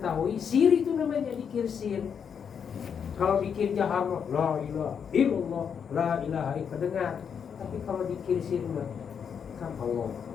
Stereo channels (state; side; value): quieter; right; 7.2 dB